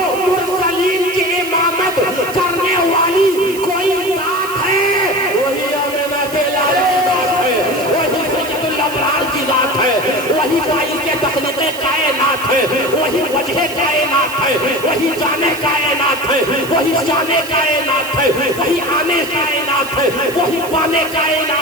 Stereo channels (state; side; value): noise; right; hiss, 14 dB below the sound